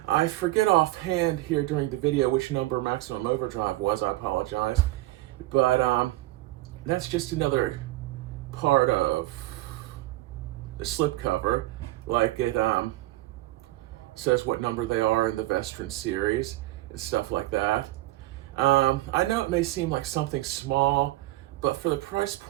I forget offhand here during the video which number Maximum Overdrive was. I apologize. But that's just another part of the slipcover. Like it says what number they are in the Vestron series and stuff like that. I know it may seem like something small, but for the price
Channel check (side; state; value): left; quieter; 17.8 dB